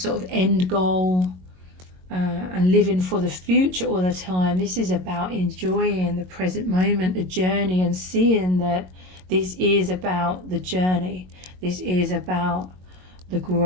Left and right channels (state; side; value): late; left; 22 ms